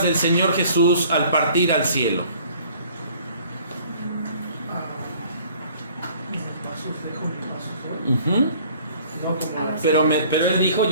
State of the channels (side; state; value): both; inverted; correlation -0.53